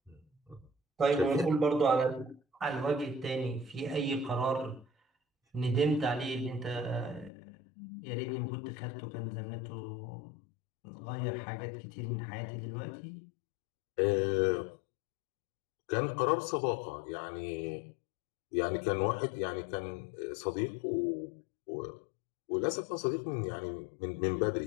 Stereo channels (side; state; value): right; drops out; at 7.3 s